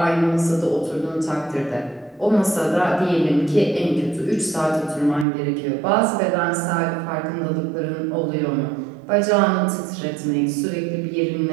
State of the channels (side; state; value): left; drops out; at 5.2 s